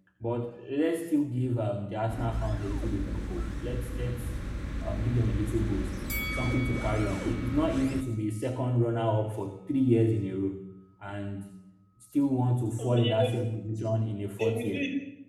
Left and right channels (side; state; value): both; identical; correlation 1.00